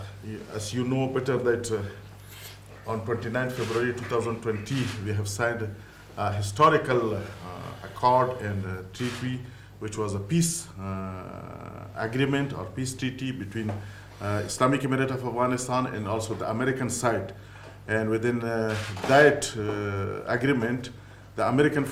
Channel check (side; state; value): both; identical; correlation 1.00